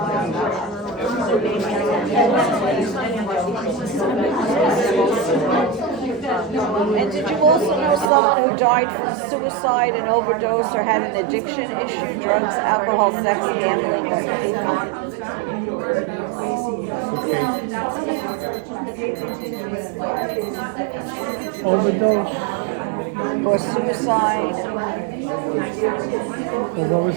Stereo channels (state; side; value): drops out; left; at 8.1 s